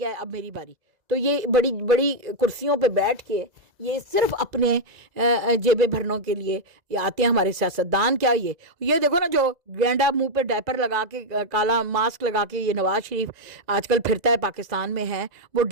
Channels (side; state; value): left; late; 2.0 ms